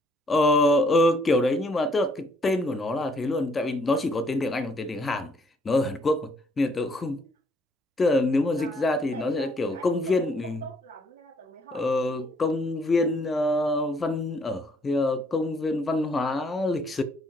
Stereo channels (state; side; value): normal; both; correlation 0.66